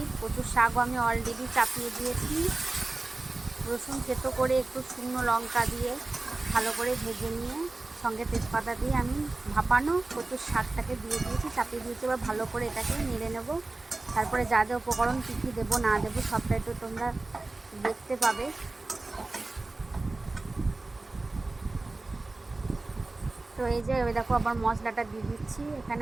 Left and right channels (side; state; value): left; quieter; 3.2 dB